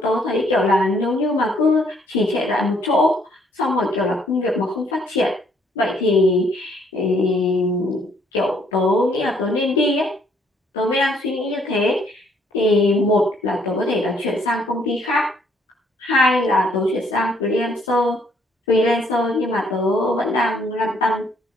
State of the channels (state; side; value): normal; both; correlation 0.66